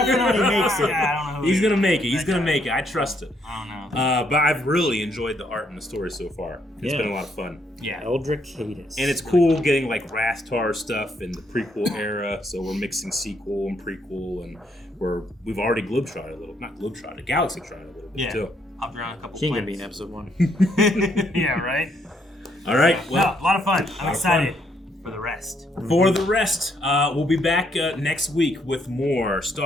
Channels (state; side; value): normal; both; correlation 0.72